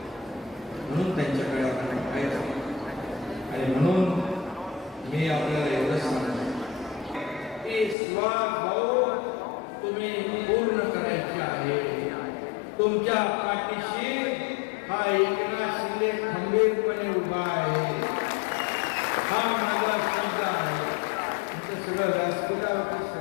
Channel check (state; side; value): drops out; right; at 8.0 s